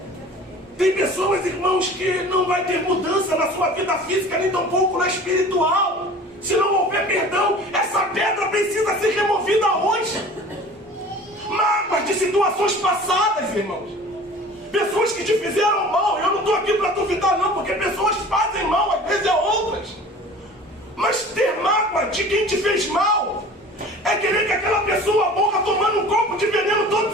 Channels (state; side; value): normal; both; correlation 0.43